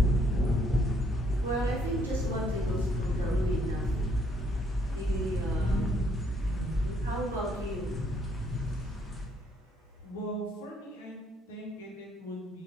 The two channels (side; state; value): both; normal; correlation 0.68